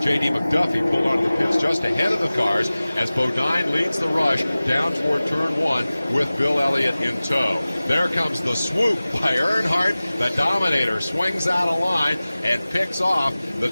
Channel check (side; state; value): both; inverted; correlation -0.98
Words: J.D. McDuffie pulled onto the pits just ahead of the cars as Bodine leads the rush down toward turn 1 with Bill Elliott in tow. There comes the swoop by Earnhardt. The Dominator swings out of line and picks off the